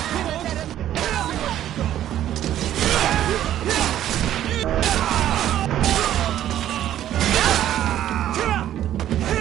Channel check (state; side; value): quieter; left; 11.9 dB